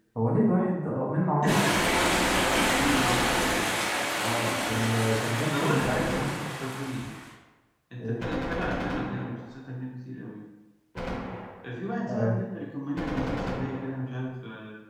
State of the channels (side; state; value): both; identical; correlation 1.00